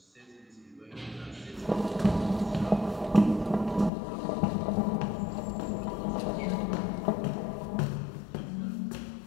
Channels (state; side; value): drops out; right; at 3.9 s